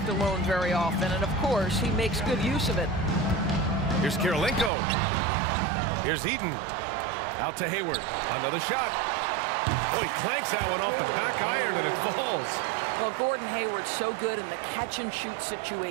alone very often, and of course, he makes good use of it. Here's Karolinko. Here's Eaton. Out to Hayward. Another shot. Oh, he clanks that one off the back iron, and it falls. Well, Gordon Hayward's so good in the catch-and-shoot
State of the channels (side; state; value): left; drops out; at 4.7 s